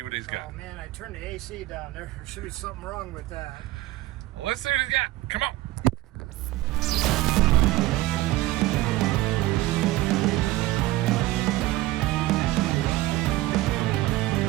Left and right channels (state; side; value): quieter; left; 17.5 dB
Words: what he's got. Oh man, I turned the AC down there. There should be something wrong with that. Well, let's see what he's got. Come on.